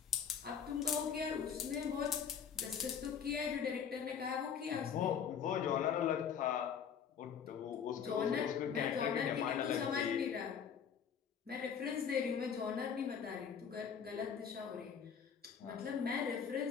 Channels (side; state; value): right; quieter; 7.4 dB